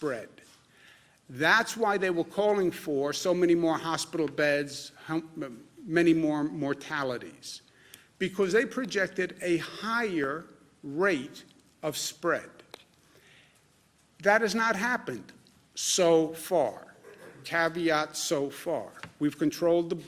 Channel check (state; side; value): identical; both; correlation 1.00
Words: That's why they were calling for so many more hospital beds, many more mortalities, because they projected a higher rate of spread. That has not happened so far. Caveat, so far. We've controlled the